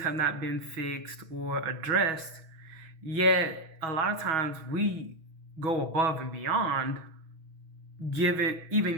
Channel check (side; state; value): left; late; 6.2 ms